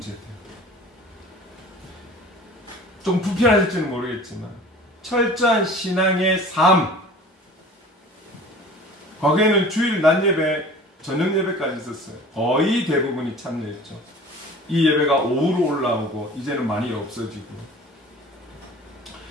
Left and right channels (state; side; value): normal; both; correlation 0.43